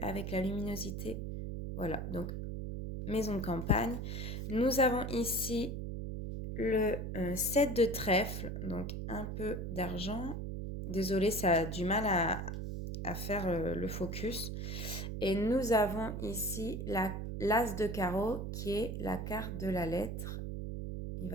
la luminosité. Voilà, donc maison de campagne. Nous avons ici le 7 de trèfle, donc un peu d'argent. Désolée, ça a du mal à faire le focus. Et nous avons ici l'as de carreau qui est la carte de la lettre. Il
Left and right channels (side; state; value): right; noise; hum, 4 dB below the sound